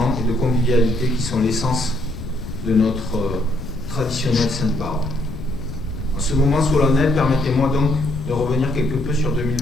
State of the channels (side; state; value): left; noise; rumble, 10 dB below the sound